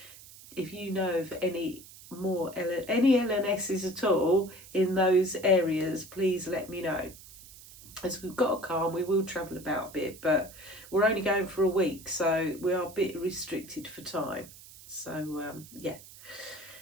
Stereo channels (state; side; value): noise; right; hiss, 19 dB below the sound